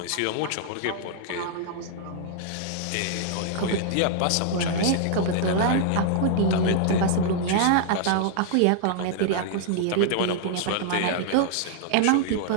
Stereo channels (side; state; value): both; different; correlation -0.01